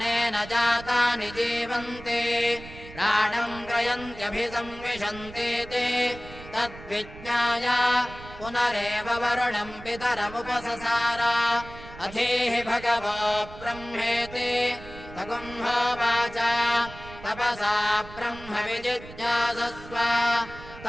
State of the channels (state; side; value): noise; right; rumble, 16 dB below the sound